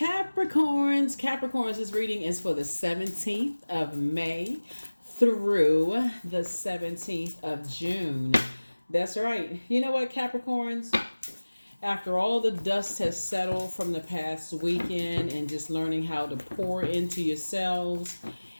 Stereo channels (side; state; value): both; inverted; correlation -1.00